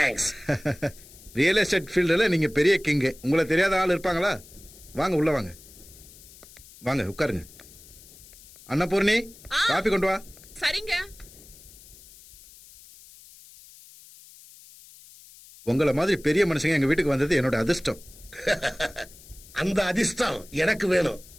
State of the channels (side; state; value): left; noise; hiss, 21 dB below the sound